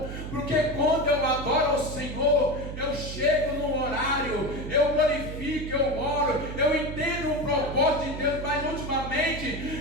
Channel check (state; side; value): noise; right; hum, 8 dB below the sound